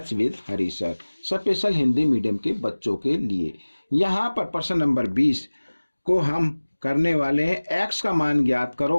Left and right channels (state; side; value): inverted; both; correlation -1.00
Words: with Hari sir, special Hindi medium के बच्चों के लिए। यहाँ पर प्रश्न नंबर 20 को हम करने वाले हैं। एक्स का मान ज्ञात